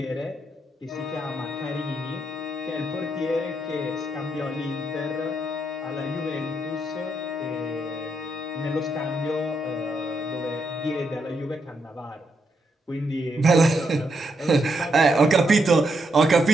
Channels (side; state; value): both; normal; correlation 0.80